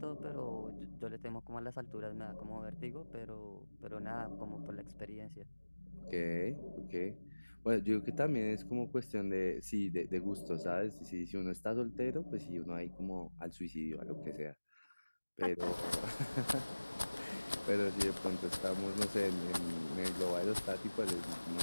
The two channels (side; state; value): both; inverted; correlation -1.00